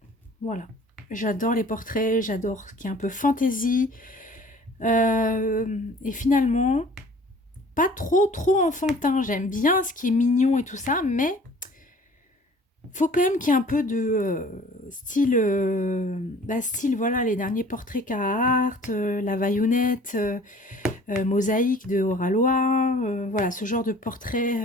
Voilà. J'adore les portraits, j'adore ce qui est un peu fantasy. Et finalement, pas trop enfantin. J'aime bien ce qui est mignon et tout ça, mais faut quand même qu'il y ait un peu de style, voilà, les derniers portraits Carhartt, la Vaillonnette, Mosaïque de Oralois, voilà, ce genre de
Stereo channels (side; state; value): both; normal; correlation 0.50